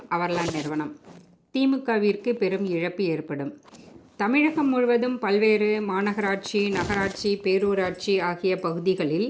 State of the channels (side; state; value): both; identical; correlation 1.00